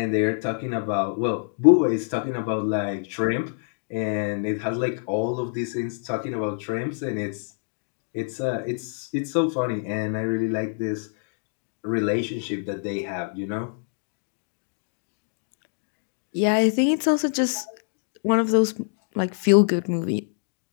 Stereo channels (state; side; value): silent; right; digital silence